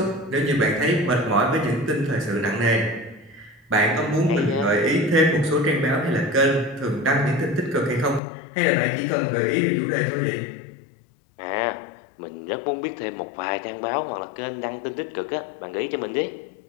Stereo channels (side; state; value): right; drops out; at 8.2 s